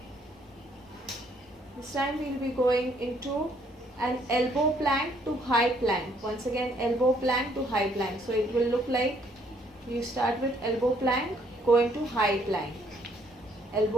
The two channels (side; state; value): both; normal; correlation 0.66